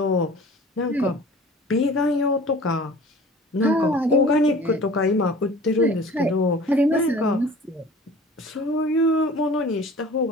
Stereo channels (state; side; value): normal; both; correlation 0.44